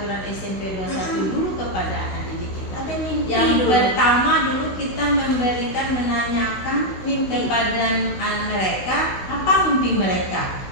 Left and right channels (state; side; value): late; right; 16 ms